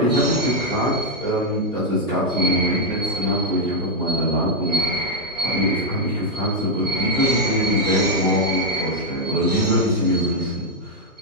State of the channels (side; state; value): both; normal; correlation 0.00